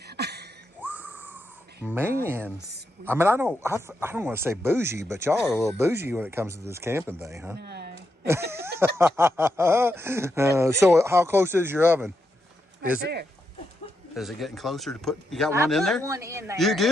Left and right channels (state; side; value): normal; both; correlation 0.83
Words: Man, I mean, I don't want to say bougie, but y'all are a little bougie when it comes to this camping thing, huh? No. So how close is your oven? Right there. Is it getting closer to put? You got I one in put there? one in there. You